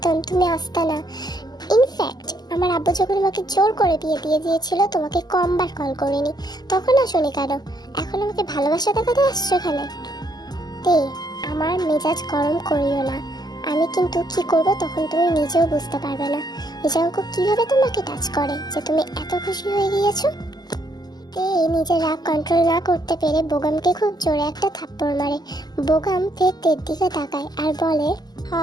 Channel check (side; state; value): right; late; 0.20 ms